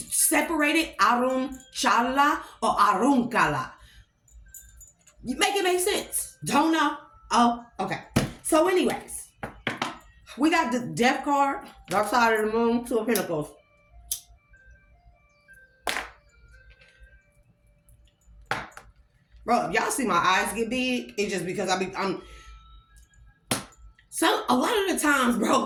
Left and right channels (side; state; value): both; identical; correlation 1.00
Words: arunchala or arunkala. You make it make sense? Don't know? Oh, okay. So anyways, we got the death card, dark side of the moon, 2 of Pentacles. Bro, if y'all see my eyes get big, it's just because I'm so a lot of the times,